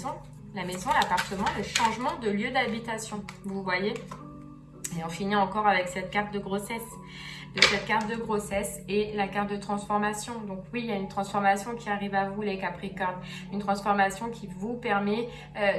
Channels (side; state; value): both; identical; correlation 1.00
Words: l'appartement, le changement de lieu d'habitation. Vous voyez? Et on finit encore avec cette carte de grossesse. Et la carte de transformation. Donc oui, il y a une transformation qui arrive à vous, les Capricornes. Une transformation qui vous permet